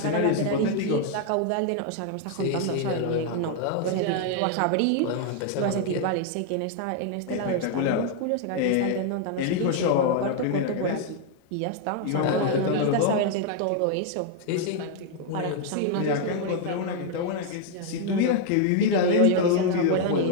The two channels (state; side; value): different; both; correlation 0.00